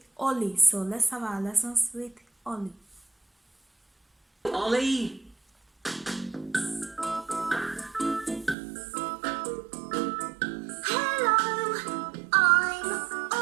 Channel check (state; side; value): drops out; left; at 8.6 s